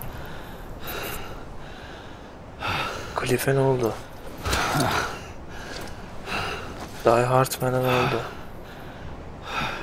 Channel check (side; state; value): both; identical; correlation 1.00